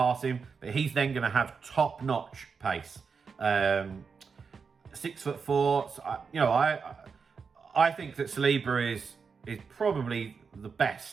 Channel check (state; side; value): quieter; left; 5.5 dB